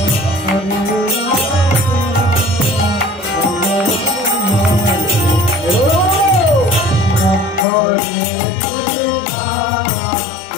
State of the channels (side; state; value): right; drops out; at 7.7 s